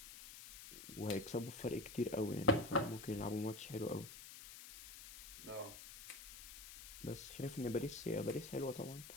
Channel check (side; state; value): left; noise; hiss, 13 dB below the sound